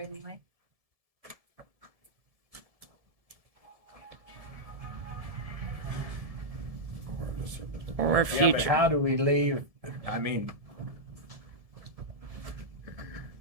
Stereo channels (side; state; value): left; late; 1.7 ms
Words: Or Yeah, but future. how do we leave, I mean,